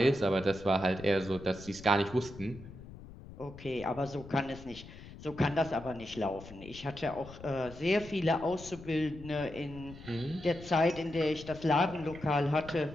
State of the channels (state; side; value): noise; left; rumble, 16 dB below the sound